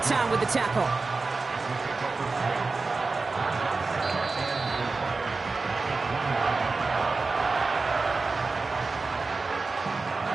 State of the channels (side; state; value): left; quieter; 3.9 dB